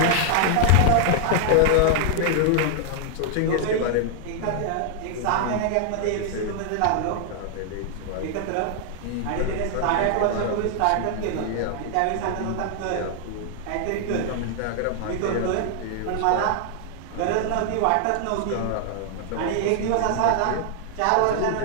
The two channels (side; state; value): both; different; correlation 0.00